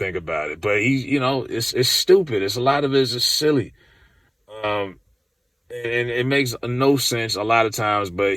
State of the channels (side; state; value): both; identical; correlation 1.00